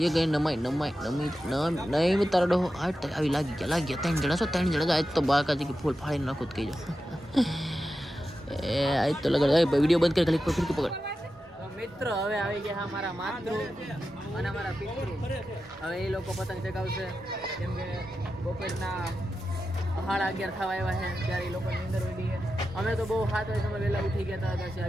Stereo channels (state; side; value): normal; both; correlation 0.91